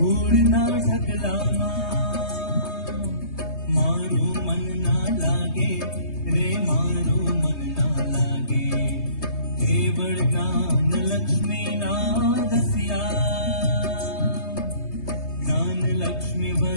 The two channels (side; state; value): right; late; 3.2 ms